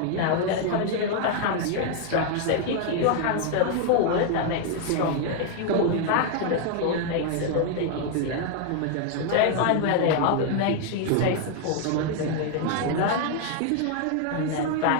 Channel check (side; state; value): both; different; correlation 0.00